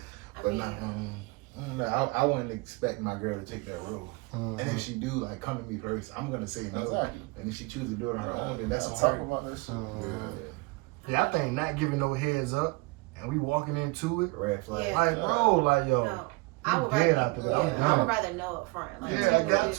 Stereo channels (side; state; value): left; quieter; 25.5 dB